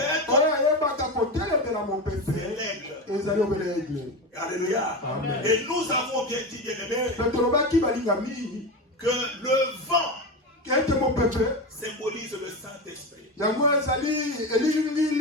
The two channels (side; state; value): both; normal; correlation 0.21